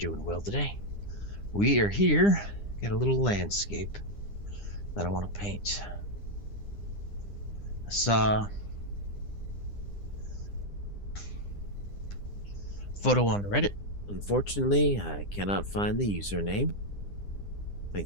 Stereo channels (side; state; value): right; late; 9.9 ms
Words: well today. We are here. Got a little landscape that I want to paint. I saw a photo on Reddit. Unfortunately, I cannot find the username. I